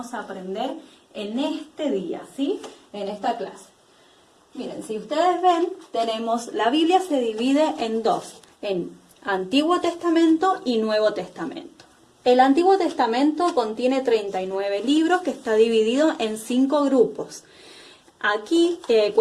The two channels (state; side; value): identical; both; correlation 1.00